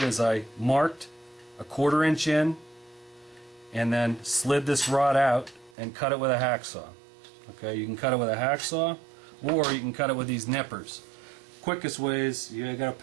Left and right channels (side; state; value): left; drops out; at 5.8 s